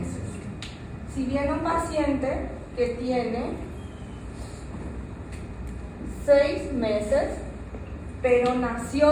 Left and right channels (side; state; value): both; identical; correlation 1.00